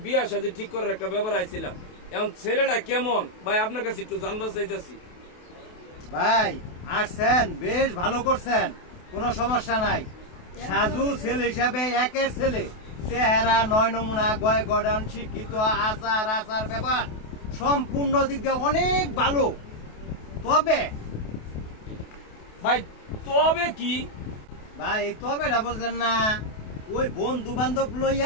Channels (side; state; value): right; late; 28 ms